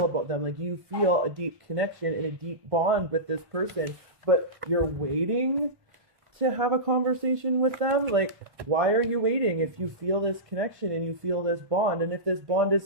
about them. Like, you feel a deep connection and a deep bond with this person, but you're waiting to have a conversation with them. Like, why are you waiting if you feel this connection and you feel this bond? And if this bond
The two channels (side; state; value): left; late; 1.5 ms